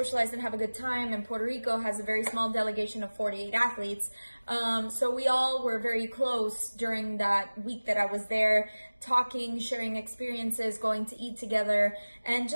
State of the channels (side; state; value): both; inverted; correlation -1.00